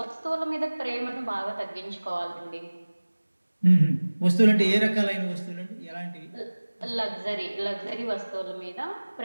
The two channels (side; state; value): both; inverted; correlation -1.00